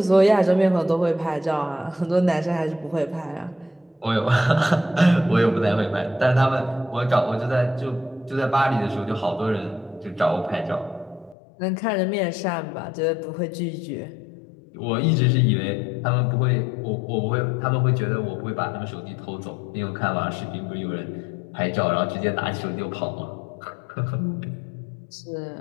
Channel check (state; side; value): drops out; right; at 11.4 s